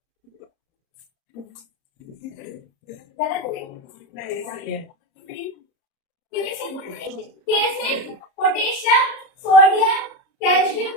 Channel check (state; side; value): late; right; 30 ms